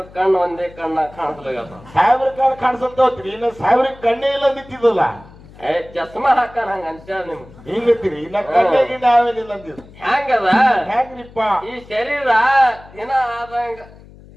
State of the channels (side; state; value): left; noise; hum, 22 dB below the sound